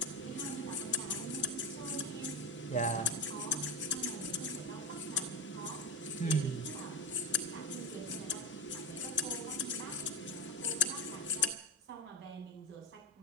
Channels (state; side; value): normal; both; correlation 0.16